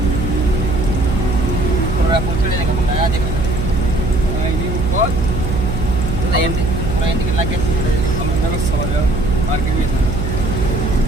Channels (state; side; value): noise; right; hum, 2 dB below the sound